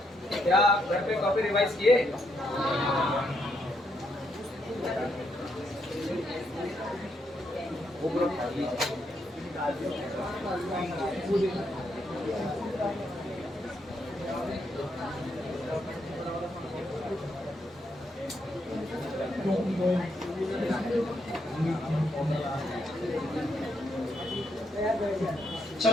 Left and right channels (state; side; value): normal; both; correlation 0.78